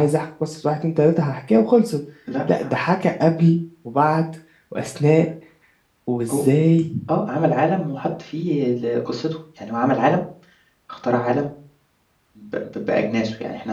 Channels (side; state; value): both; identical; correlation 1.00